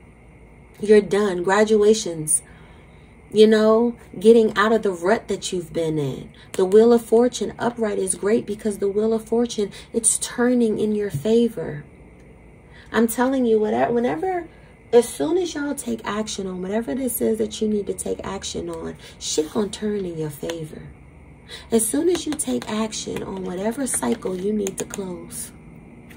You're done. Graduations. You know, getting out of the rut that you've been in. The Wheel of Fortune upright is great because the Wheel of Fortune, it's turning in your favor. I'm telling you, whenever, as soon as y'all take action on whatever this is that you need to take action on, shit gonna turn in your favor. As soon as you take action on whatever cycle you need to close.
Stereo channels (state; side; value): identical; both; correlation 1.00